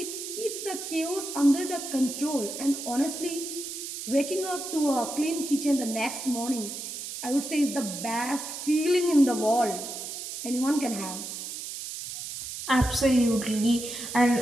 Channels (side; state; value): right; noise; hiss, 7 dB below the sound